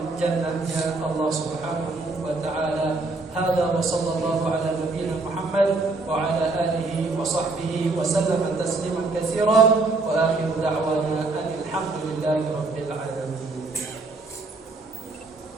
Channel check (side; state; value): left; quieter; 3.5 dB